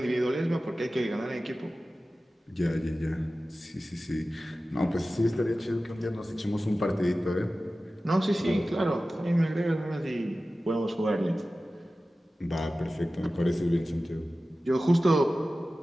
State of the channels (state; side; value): normal; both; correlation 0.95